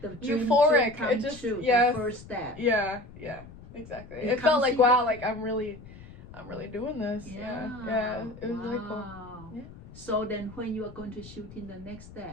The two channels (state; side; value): noise; left; rumble, 18 dB below the sound